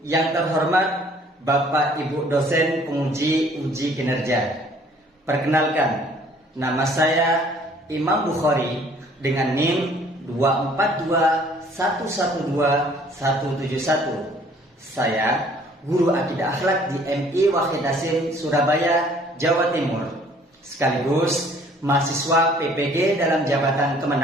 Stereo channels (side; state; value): both; normal; correlation 0.57